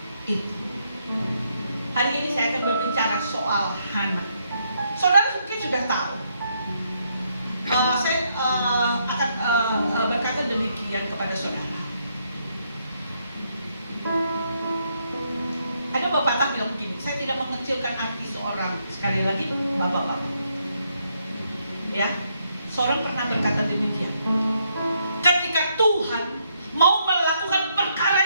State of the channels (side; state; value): both; inverted; correlation -0.75